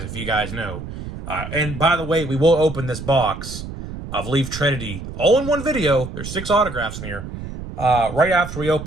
if you guys know. And by the way, we will open this box of Leaf Trinity all in one video. There's 6 autographs in here. Right after we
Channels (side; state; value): right; noise; rumble, 9 dB below the sound